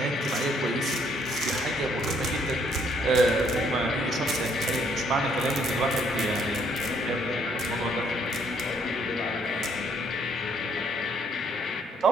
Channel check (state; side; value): normal; both; correlation 0.67